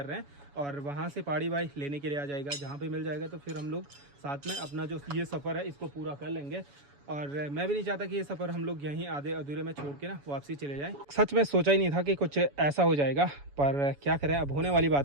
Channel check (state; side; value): late; left; 7.1 ms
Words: रहे हैं और वहाँ से पहाड़ी भाई लेने के लिए आ जाएगा। जहाँ पे मिल जाएगा तो फिर हम लोग साथ में अपना जो ये सफ़र है इसको पूरा कर लेंगे। और मैं भी नहीं चाहता कि ये सफ़र हम लोग यहीं आधे अधूरे में छोड़ के ना वापसी चले जाएं। सच में सोचा ही नहीं था कि कुछ ऐसा हो जाएगा, पर क्या करें, अब होने वाली